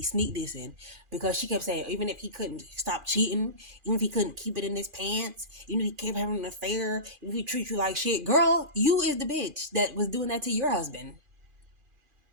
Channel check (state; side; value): late; left; 2.5 ms